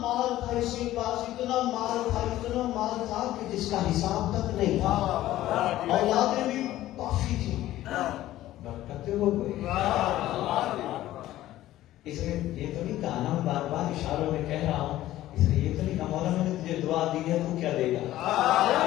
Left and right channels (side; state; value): right; quieter; 14.6 dB